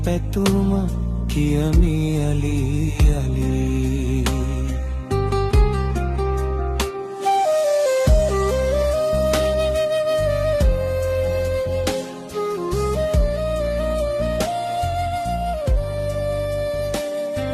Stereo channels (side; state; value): both; identical; correlation 1.00